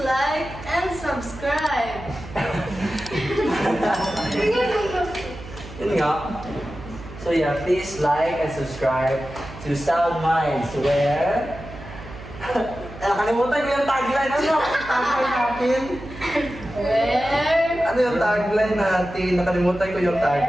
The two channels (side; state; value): right; noise; hum, 15 dB below the sound